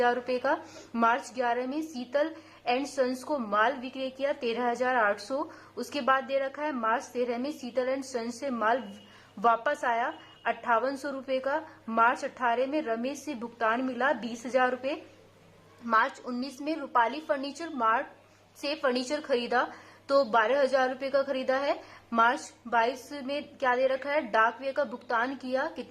रुपए का। मार्च 11 में शीतल एंड सन्स को माल विक्रय किया 13,800। उसके बाद दे रखा है मार्च 13 में शीतल एंड सन्स से माल वापस आया 5800 रुपए का। मार्च 18 में रमेश से भुगतान मिला 20,000 रुपए। मार्च 19 में रूपाली फर्नीचर मार्ट से फर्नीचर खरीदा तो 12,000 रुपए का खरीदा है। मार्च 22 में क्या दे रखा है? डाक व्यय का भुगतान किया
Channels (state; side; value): identical; both; correlation 1.00